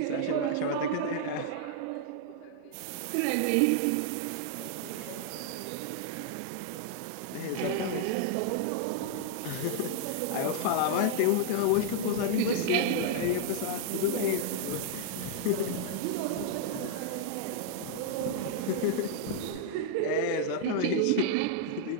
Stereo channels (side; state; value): both; different; correlation -0.01